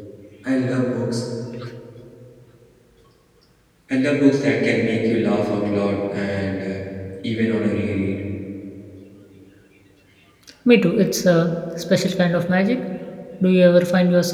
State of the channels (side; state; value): both; identical; correlation 1.00